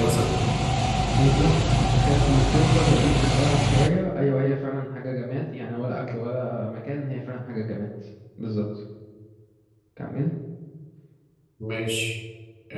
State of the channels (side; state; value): both; identical; correlation 1.00